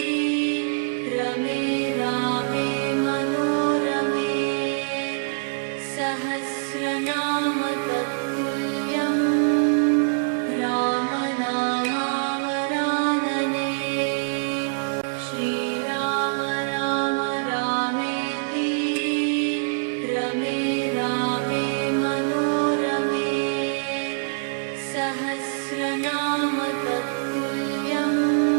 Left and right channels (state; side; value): silent; left; 62 dB below the other